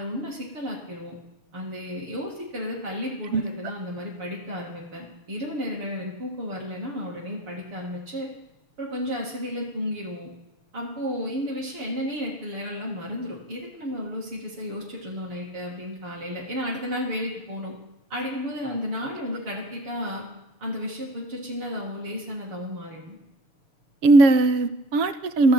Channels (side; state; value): left; late; 6.8 ms